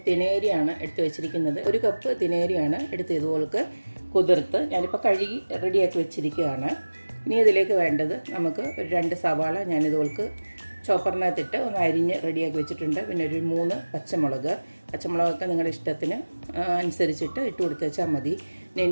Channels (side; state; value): both; inverted; correlation -1.00